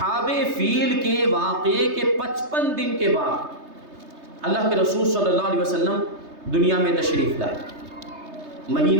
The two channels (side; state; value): left; late; 3.3 ms